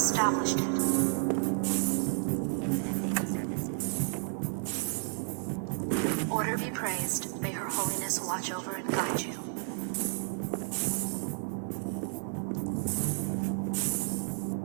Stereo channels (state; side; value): silent; left; 57 dB below the other